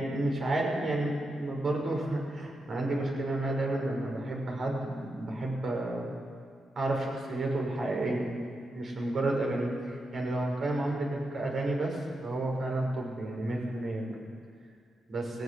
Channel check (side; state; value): both; normal; correlation 0.86